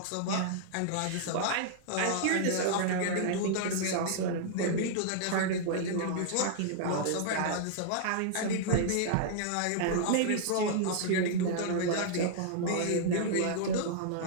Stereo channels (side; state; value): both; different; correlation -0.01